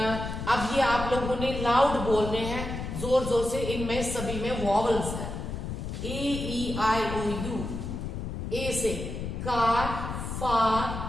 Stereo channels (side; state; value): left; noise; rumble, 5 dB below the sound